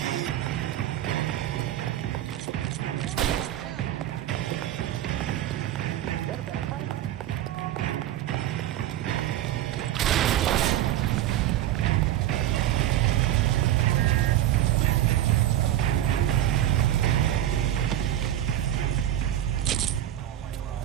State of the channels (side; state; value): left; quieter; 12.5 dB